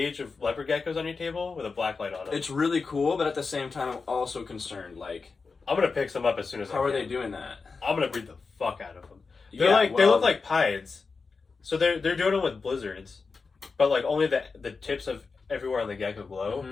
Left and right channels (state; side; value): quieter; right; 4.6 dB